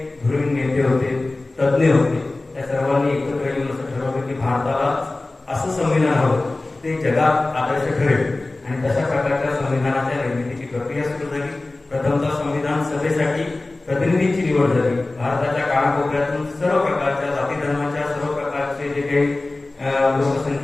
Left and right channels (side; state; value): right; quieter; 3.0 dB